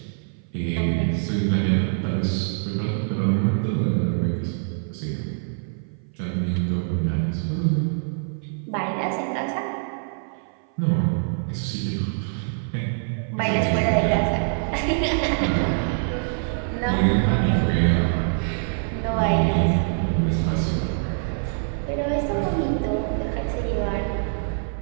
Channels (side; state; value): left; silent; 56 dB below the other